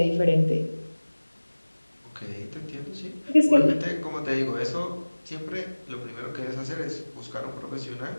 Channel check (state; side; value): inverted; both; correlation -1.00